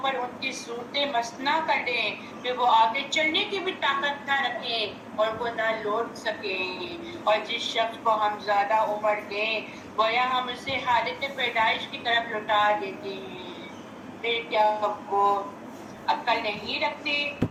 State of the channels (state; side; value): identical; both; correlation 1.00